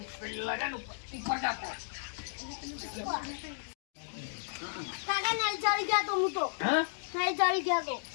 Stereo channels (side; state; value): right; silent; digital silence